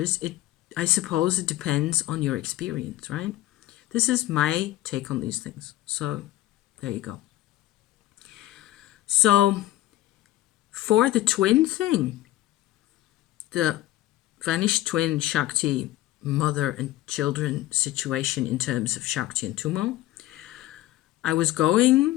I suppose it depends on your experience, right? This is my take on these things. So there you go. So for the twin thing, the vanished twin Shakti mother and children situation in terms of Shakti and Tummo, I was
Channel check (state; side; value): quieter; right; 15.7 dB